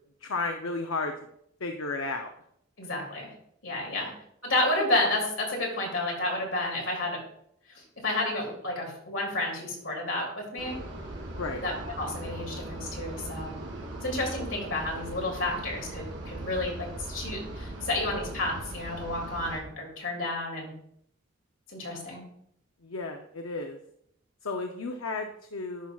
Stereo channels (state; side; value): normal; both; correlation -0.03